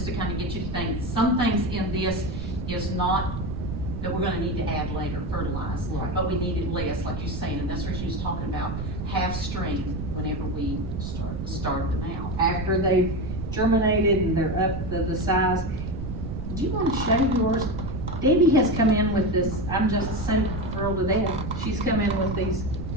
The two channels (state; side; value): noise; right; rumble, 5 dB below the sound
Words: to kind of get you to think, some things in this is not, that we're gonna need to add later, fertilize. Right. But we need it less, like you're saying, and that's what she was talking about, half strength whenever we start them out. After they've germinated and they're up the size. Do you wanna show yours? Debbie has come in with this, I'm just so thrilled to death. She's come in with these